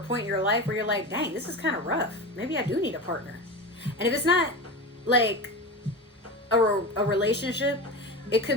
point in your life where you're like, dang, this is kind of rough. Maybe I do need a partner. And if it's not like a relationship, it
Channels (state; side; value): normal; both; correlation 0.26